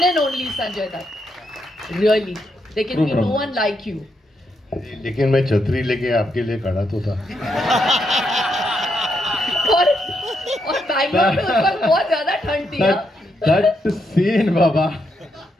and only Sanjay Dutt. Really, there can be no one like you. लेकिन मैं छतरी लेके आपके लिए खड़ा तो था। और बैंगलोर में उस वक्त बहुत ज्यादा ठंड थी। That scene, Baba.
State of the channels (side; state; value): both; normal; correlation 0.80